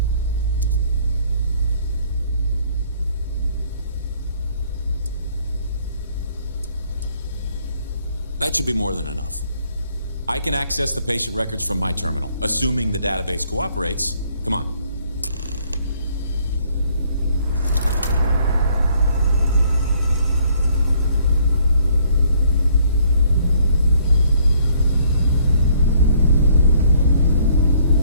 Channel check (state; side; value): inverted; both; correlation -0.64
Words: That should be more than enough. I can access the patient records from my terminal, assuming the database cooperates. Come on.